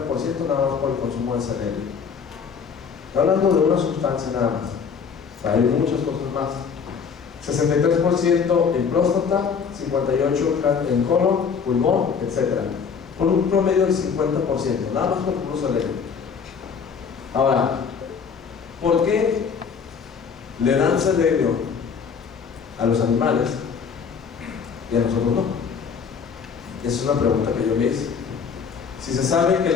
nada más por el consumo de selenio. Estoy hablando de una sustancia nada más. O sea, hay muchas cosas más. 63% en próstata, 58% en colon, pulmón, etc. Por un promedio del 50%, nada más por el puro selenio. Ahora, ¿por qué le dan selenio a los animales y a nosotros no? Esa es una pregunta que yo me hice. Si se sabe que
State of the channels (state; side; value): quieter; right; 6.2 dB